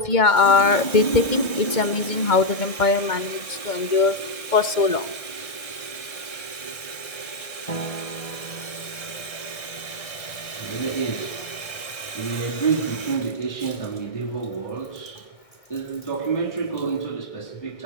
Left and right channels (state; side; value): late; right; 1.6 ms